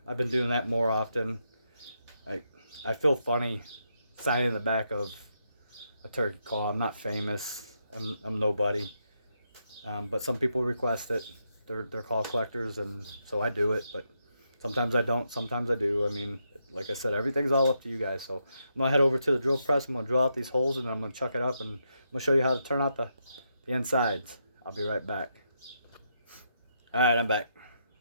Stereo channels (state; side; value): inverted; both; correlation -0.81